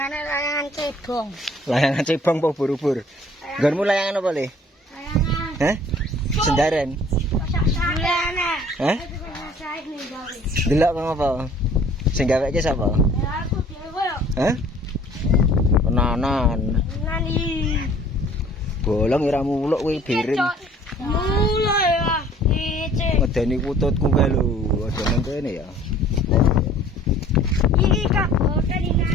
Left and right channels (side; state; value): both; normal; correlation 0.53